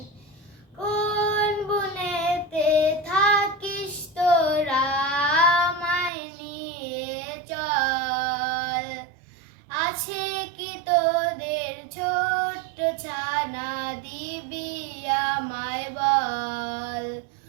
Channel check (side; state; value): left; drops out; at 6.1 s